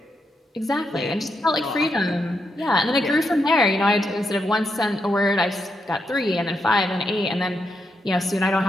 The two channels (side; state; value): both; normal; correlation 0.82